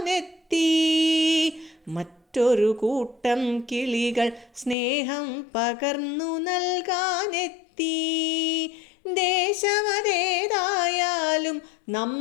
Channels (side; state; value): right; drops out; at 4.8 s